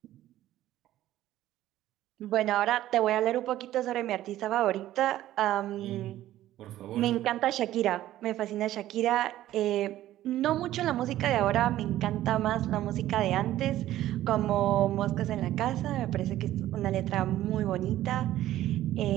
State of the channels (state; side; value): quieter; left; 13.9 dB